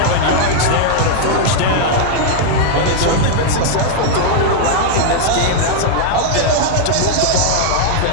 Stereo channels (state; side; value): different; both; correlation -0.01